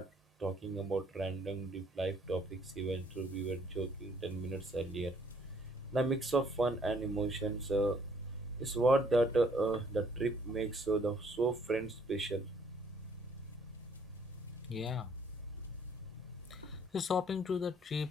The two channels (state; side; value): normal; both; correlation 0.63